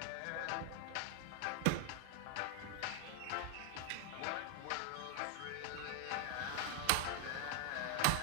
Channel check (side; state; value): both; different; correlation 0.00